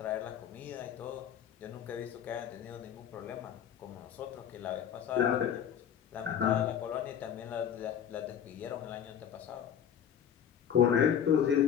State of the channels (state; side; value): quieter; right; 8.9 dB